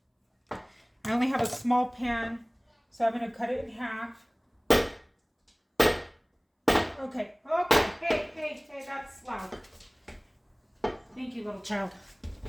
I only have a small pan, so I'm going to cut it in half. Okay, hey, that's loud. Thank you, little child.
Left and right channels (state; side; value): identical; both; correlation 1.00